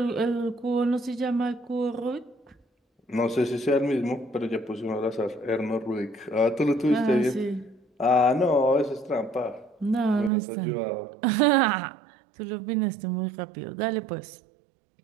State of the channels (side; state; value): left; drops out; at 10.3 s